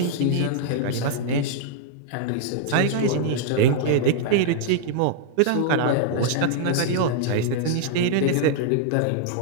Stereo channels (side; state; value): both; different; correlation -0.01